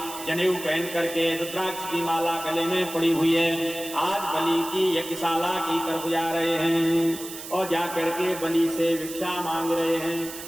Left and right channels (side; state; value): right; noise; hiss, 11 dB below the sound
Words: जनेऊ पहन करके रुद्राक्ष की माला गले में पड़ी हुई है। आज बलि की यज्ञशाला की तरफ जा रहे हैं और जाकर के बलि से भिक्षा मांग रहे हैं।